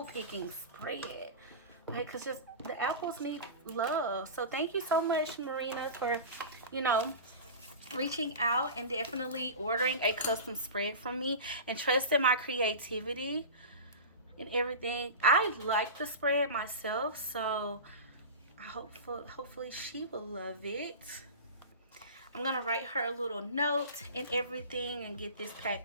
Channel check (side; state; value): both; inverted; correlation -0.30